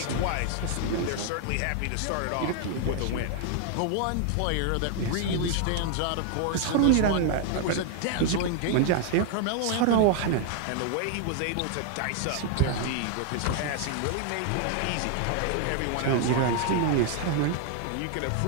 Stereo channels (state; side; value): different; both; correlation 0.00